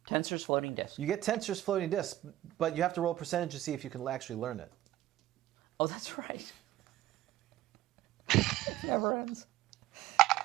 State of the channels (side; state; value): left; quieter; 14.5 dB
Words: Tensor's floating disc. You get Tensor's floating disc, but you have to roll percentage to see if you can actually learn it. Oh, that's right. Never ends.